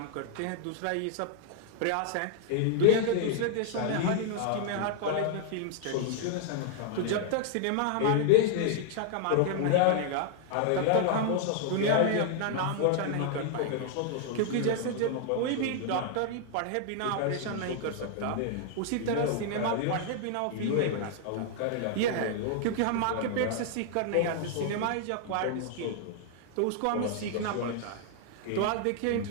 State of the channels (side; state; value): both; different; correlation 0.00